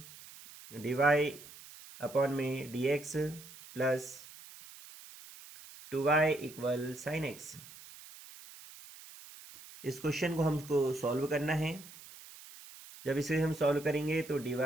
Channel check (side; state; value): right; noise; hiss, 18 dB below the sound